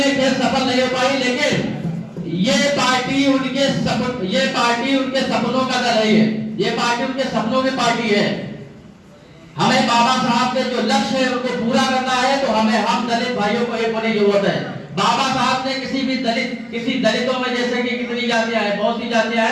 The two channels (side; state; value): both; identical; correlation 1.00